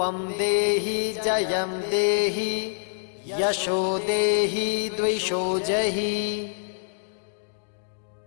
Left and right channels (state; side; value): silent; right; digital silence